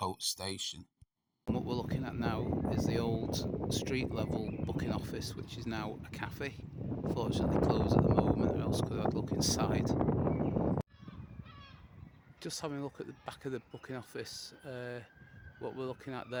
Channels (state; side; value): identical; both; correlation 1.00